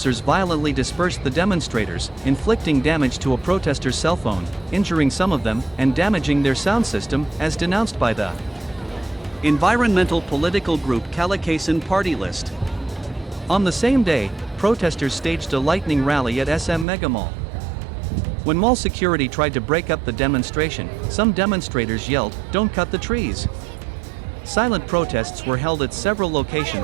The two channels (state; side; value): drops out; left; at 16.9 s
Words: violently dispersed the demonstrators, inflicting damage to a protester's cell phone, injuring some of them, and damaging their sound system, as denounced by the environmental political group Kalikasan Party List. On the same day, protesters staged a lightning rally at SM Megamall. When mall security tried to break up the demonstration, some demonstrators yelled, "Don't cut the trees!" Silent protests were held at several